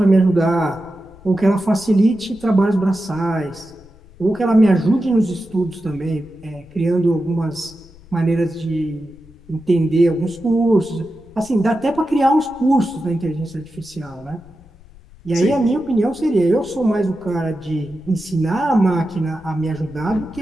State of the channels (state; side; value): noise; left; rumble, 24 dB below the sound